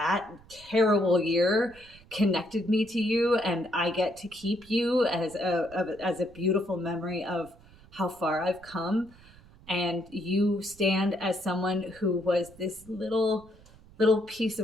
terrible year connected me to you, and I get to keep you as a beautiful memory of how far I've come. And you stand as someone who was this little piece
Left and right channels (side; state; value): right; noise; rumble, 24 dB below the sound